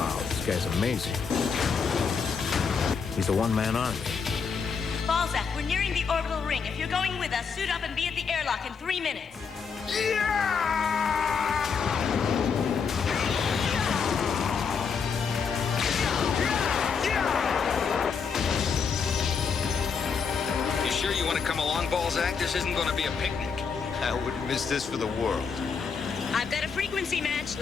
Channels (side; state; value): right; quieter; 5.8 dB